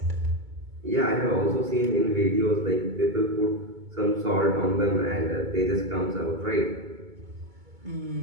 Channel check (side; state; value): left; late; 2.2 ms